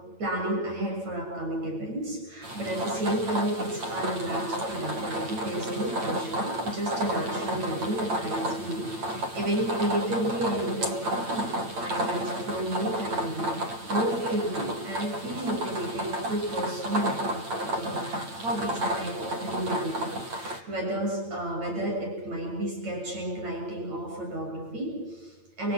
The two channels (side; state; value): left; late; 8.9 ms